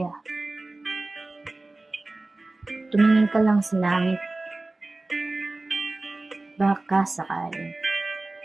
Tumingin ka lang sa langit, baka sakali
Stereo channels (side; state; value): left; quieter; 3.0 dB